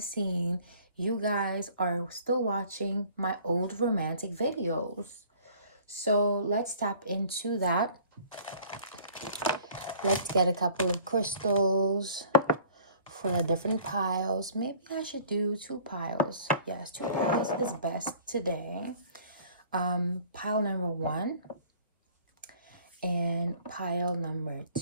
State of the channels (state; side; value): inverted; both; correlation -0.51